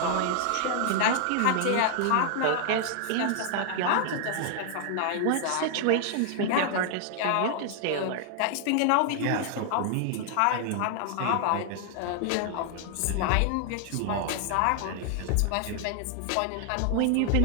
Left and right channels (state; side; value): different; both; correlation 0.00